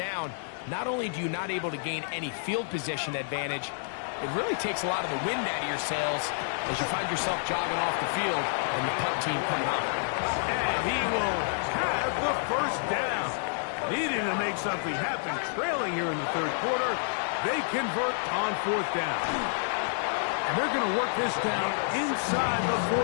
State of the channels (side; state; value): right; silent; digital silence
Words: Not only do you not able to gain any field position advantage, it really takes a lot of the wind out of your sails as you find yourself jogging off the field and the punt team coming up. And he will have the first down. Needing to make something happen, trailing here in the 3rd quarter. They convert on 4th down. And they're going to work this down inside the